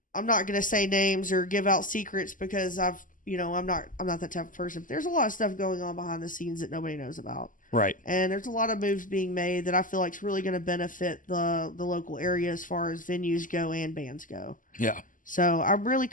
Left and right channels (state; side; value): late; right; 0.38 ms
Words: going to say names or give out secrets because I'm not that type of person. But there's a lot of stuff going on behind the scenes that nobody knows about. Right. And there's a lot of moves being made that I feel like is really going to benefit the local area as far as venues go and bands go. Yeah. So I'm really